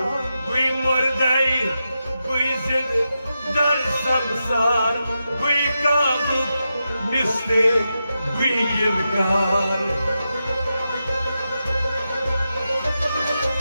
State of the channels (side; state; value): both; inverted; correlation -0.88